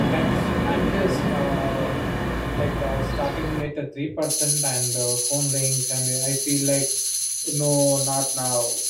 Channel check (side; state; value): both; identical; correlation 1.00